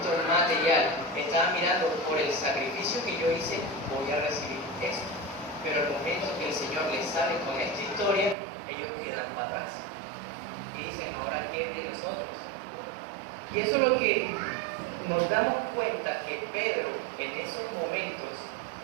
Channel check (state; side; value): drops out; left; at 8.3 s